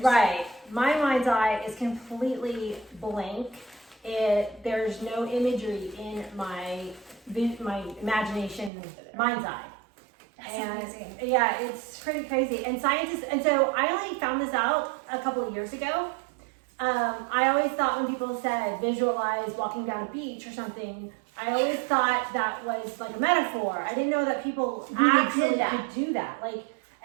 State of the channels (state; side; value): drops out; left; at 8.7 s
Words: right. My mind's eye is completely blank. There's no imagery in my imagination mind's eye. That's And amazing. yeah, it's pretty crazy. And scientists, and so I only found this out a couple of years ago. I always thought when people said visualize walking down a beach or something, I always thought that was like a metaphor. I didn't know that people Really actually did that. could do that. Like,